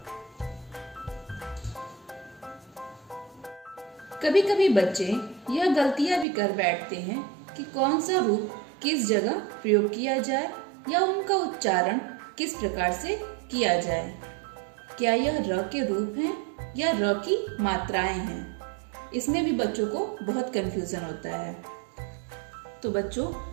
कभी कभी बच्चे यह गलतियां भी कर बैठते हैं कि कौन सा रूप किस जगह प्रयोग किया जाए या उनका उच्चारण किस प्रकार से किया जाए। क्या यह र के रूप हैं या र की मात्राएं हैं? इसमें भी बच्चों को बहुत कंफ्यूजन होता है। तो बच्चों,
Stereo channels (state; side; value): drops out; left; at 6.2 s